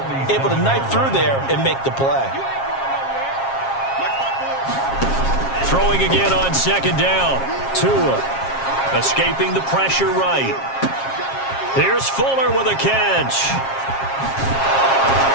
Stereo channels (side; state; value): right; late; 7.4 ms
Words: able to knife through there and make the play. Throwing again on second down. Tua escaping the pressure right. Here's Fuller with a catch.